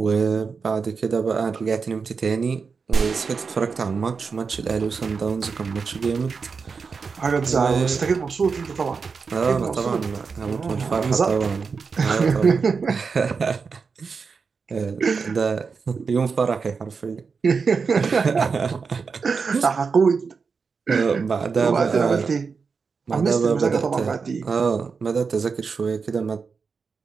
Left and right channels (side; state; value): left; quieter; 5.2 dB